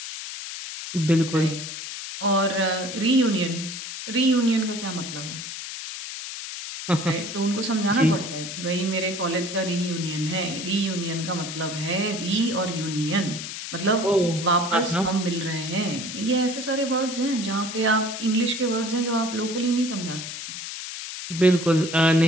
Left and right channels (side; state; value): left; noise; hiss, 8 dB below the sound